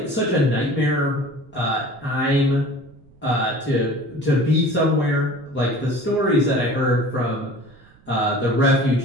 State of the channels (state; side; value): noise; right; rumble, 28 dB below the sound